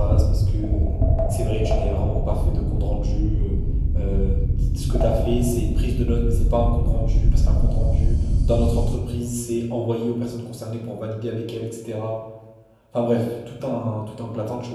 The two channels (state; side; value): identical; both; correlation 1.00